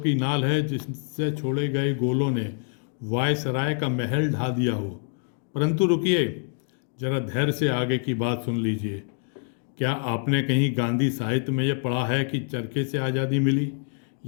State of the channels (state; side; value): silent; right; 56 dB below the other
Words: की नाल है जिससे छोड़े गए गोलों ने वायसराय का महल ढा दिया हो। परंतु रुकिए, जरा धैर्य से आगे की बात सुन लीजिए। क्या आपने कहीं गांधी साहित्य में यह पढ़ा है कि चरखे से आज़ादी मिली,